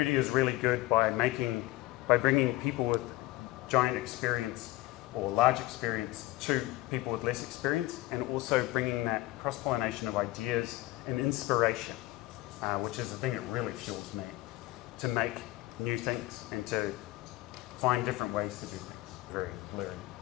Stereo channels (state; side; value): quieter; right; 18.8 dB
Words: is really good by bringing people with giant experience or large experience to people with less experience, and also bringing that cross-pollination of ideas and inspiration, which is the thing that really fuels me, to make new things and to find different ways to do things. Very blurry.